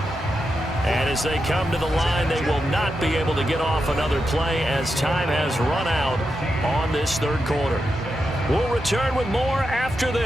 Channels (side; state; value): both; normal; correlation 0.87